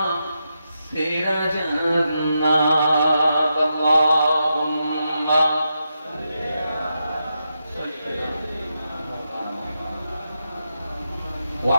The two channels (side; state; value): both; inverted; correlation -0.86